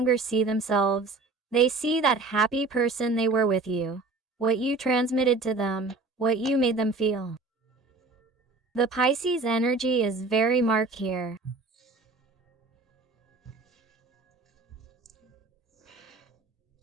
see themselves. They see that happy person they were with you, what you transmitted to them, what you made them feel. The Pisces energy is very marked here.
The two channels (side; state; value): left; quieter; 3.6 dB